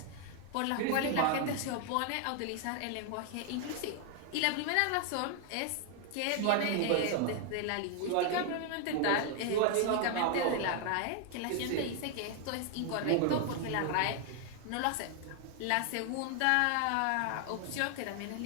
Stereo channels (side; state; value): both; different; correlation 0.00